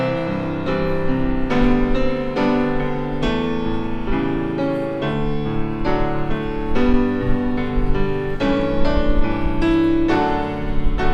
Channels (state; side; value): identical; both; correlation 1.00